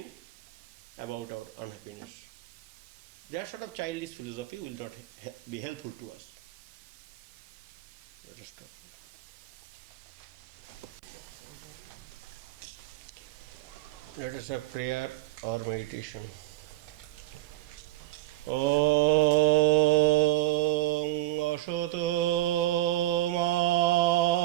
about our unhappiness. That sort of childish philosophy will not be helpful to us. Let us stop. Let us have prayer or meditation. Om Ashato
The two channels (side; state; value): left; quieter; 17.2 dB